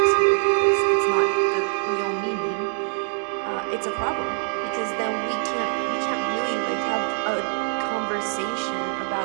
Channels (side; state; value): left; silent; digital silence